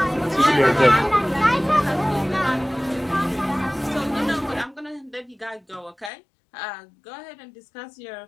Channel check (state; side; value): drops out; right; at 6.1 s